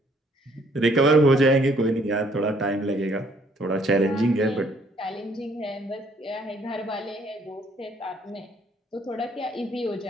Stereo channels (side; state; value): both; normal; correlation 0.64